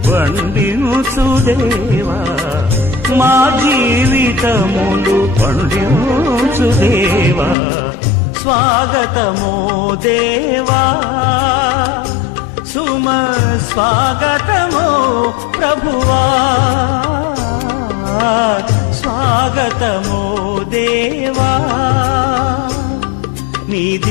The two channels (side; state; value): right; drops out; at 7.6 s